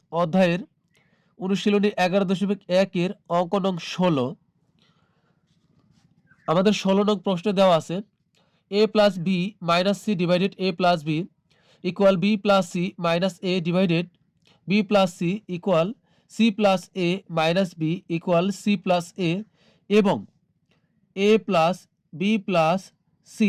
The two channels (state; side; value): identical; both; correlation 1.00